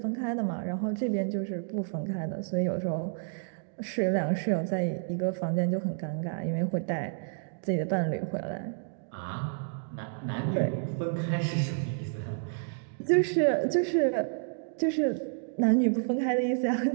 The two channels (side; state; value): left; silent; digital silence